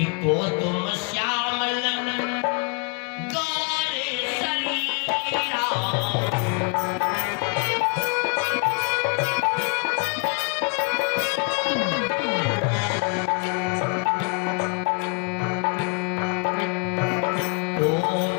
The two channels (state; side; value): quieter; right; 35.5 dB